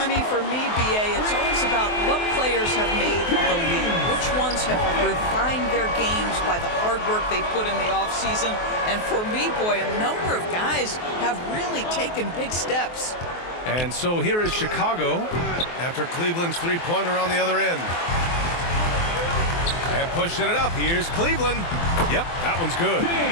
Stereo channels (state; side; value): late; right; 23 ms